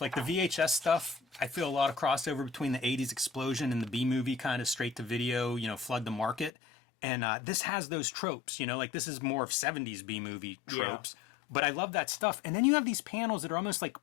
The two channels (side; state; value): right; drops out; at 6.5 s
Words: like the VHS stuff. I feel a lot of crossover between the 80s explosion and the B-movie kind of straight to video, flood the market. And this has those tropes, like this is more of 70s B-movie tropes. Yeah. But I love that stuff. And then you have these panels that are almost like